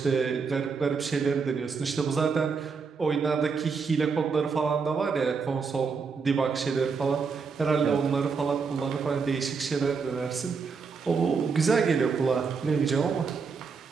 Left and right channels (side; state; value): left; quieter; 5.3 dB